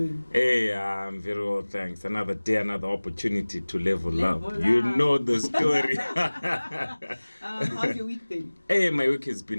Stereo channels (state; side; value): inverted; both; correlation -1.00